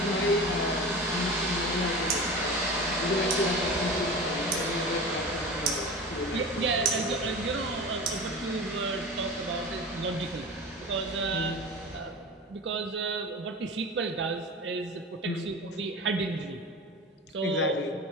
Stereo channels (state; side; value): normal; both; correlation 0.32